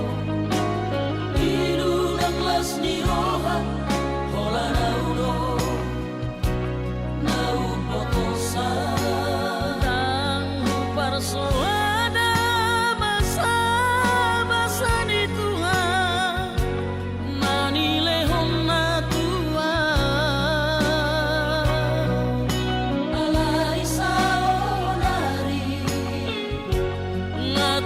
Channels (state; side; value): identical; both; correlation 1.00